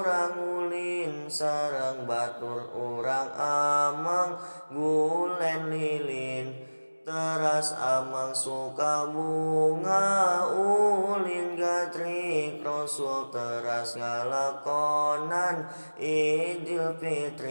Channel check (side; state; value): both; inverted; correlation -1.00